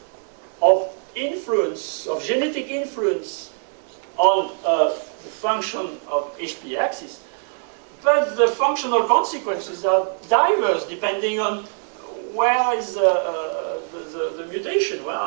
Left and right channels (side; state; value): left; silent; 57 dB below the other